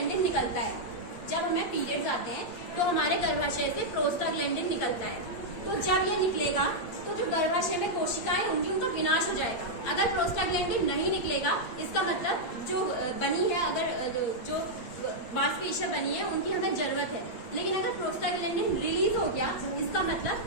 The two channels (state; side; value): late; right; 8.4 ms